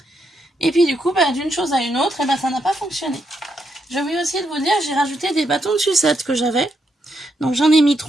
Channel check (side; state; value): both; normal; correlation 0.80